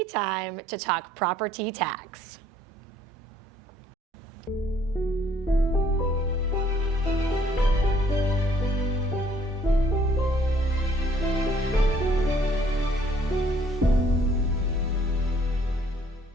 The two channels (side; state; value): both; normal; correlation 0.62